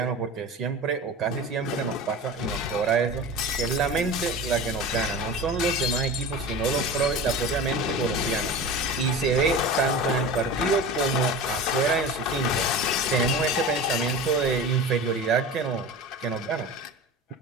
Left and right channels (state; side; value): normal; both; correlation 0.32